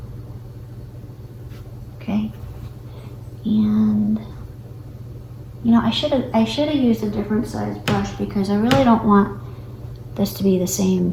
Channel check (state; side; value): identical; both; correlation 1.00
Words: Okay. And you know, I should have used a different size brush because I really don't want this to be the same,